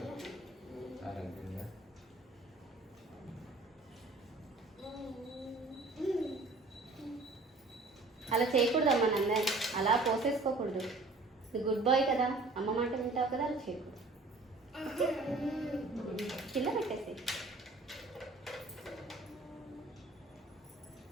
అలా చేయకూడదమ్మా నందని, అలా పోసేసుకోకూడదు. గుడ్ బాయ్ కదా, అమ్మ మాట వింటావు కదా, అలా చేయకూడదు. కింద పెట్టేసి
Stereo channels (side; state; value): left; quieter; 3.3 dB